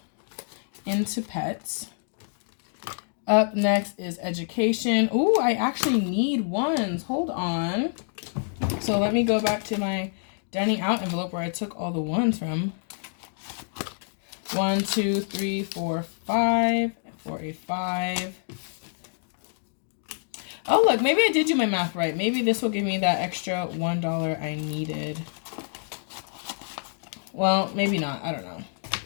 into Pets. Up next is education. Ooh, I actually need ones. Hold on. So let me go back to my dining out envelope where I took all the ones from. 1, 2, 3, 4, 5 for a 5. Oh, look, maybe I did do my math right. Maybe this will give me that extra $1 I needed. Well, maybe not. I don't know.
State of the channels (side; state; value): right; silent; 60 dB below the other